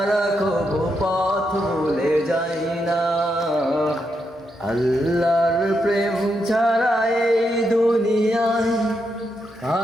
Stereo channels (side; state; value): both; normal; correlation 0.82